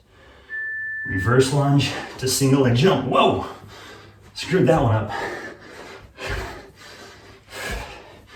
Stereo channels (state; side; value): identical; both; correlation 1.00